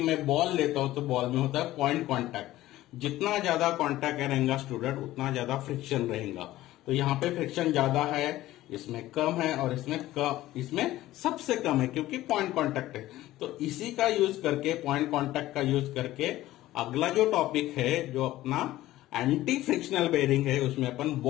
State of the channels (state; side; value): quieter; right; 15.7 dB